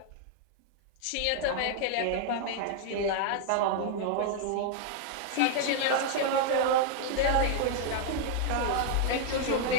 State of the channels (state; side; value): different; both; correlation 0.00